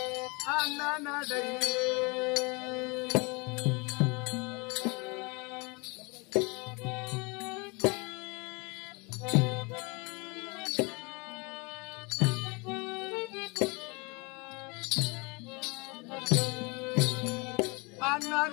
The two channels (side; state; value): right; quieter; 28.7 dB